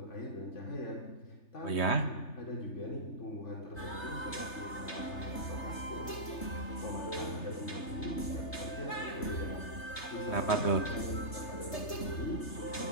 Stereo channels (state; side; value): late; right; 3.3 ms